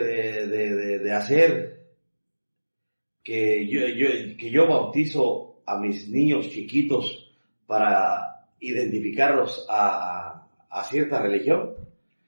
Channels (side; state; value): both; inverted; correlation -1.00